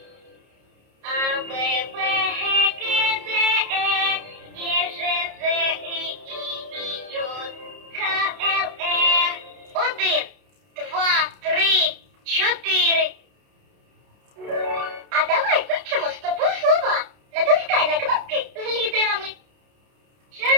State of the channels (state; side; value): late; left; 30 ms